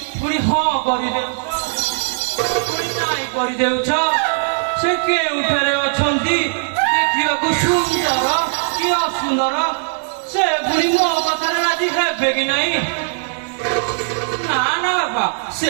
ପୁଣି ହଁ କରିଦେଉଛ, ପୁଣି ନାଇଁ କରିଦେଉଛ। ସେ କେଉଁଠାରେ ଅଛନ୍ତି? ଦେଖିବାକୁ ସୁନ୍ଦର କି ଅସୁନ୍ଦର? ସେ ପୁଣି ମୋ କଥାରେ ରାଜି ହେବେ କି ନାହିଁ? ନା ନା ବାବା, ସେ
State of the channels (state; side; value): silent; left; 67 dB below the other